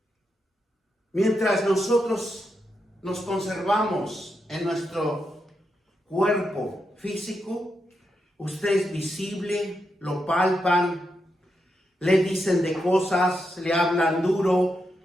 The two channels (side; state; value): both; normal; correlation 0.84